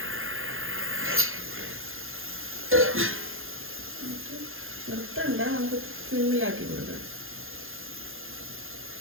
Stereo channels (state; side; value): late; left; 0.60 ms